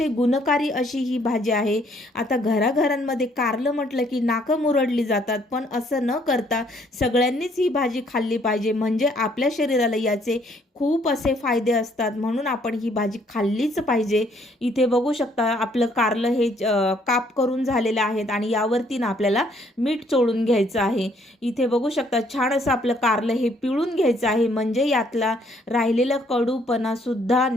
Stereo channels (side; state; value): both; normal; correlation 0.65